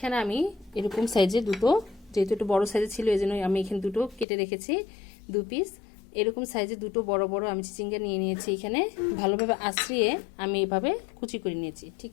আমি এরকম সাইজে দুটো, যেহেতু একটু বড় সাইজে ছিল এই জন্য আমি এখানে দুটো কেটে রেখেছি, 2 পিস। এরকম সাইজে দুটো বড় বড় আমি চিচিঙ্গা নিয়ে নিয়েছি। এখানে ভালোভাবে আঁচড়িয়ে আমি এভাবে কুচি করে নিয়েছি, ঠিক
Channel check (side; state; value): right; drops out; at 4.2 s